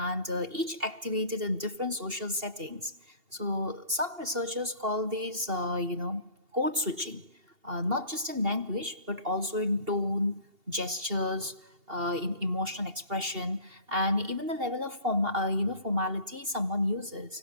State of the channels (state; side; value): late; left; 2.8 ms